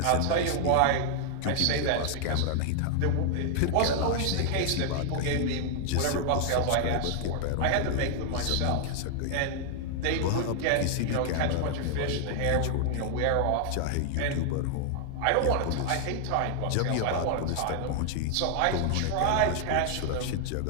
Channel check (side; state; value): both; different; correlation 0.00